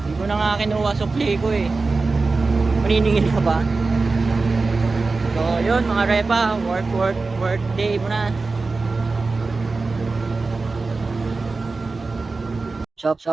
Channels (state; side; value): quieter; left; 3.9 dB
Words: Hindi ko na nga kinuha sukli ko eh. Maniningil ka ba? So yun mga repa, work day muna.